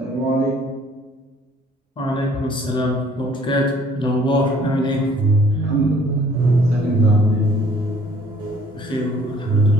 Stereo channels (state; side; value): normal; both; correlation 0.57